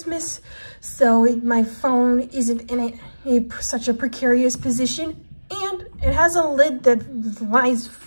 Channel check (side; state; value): both; inverted; correlation -1.00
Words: so my phone isn't in such a precarious position, and it has a lid that lies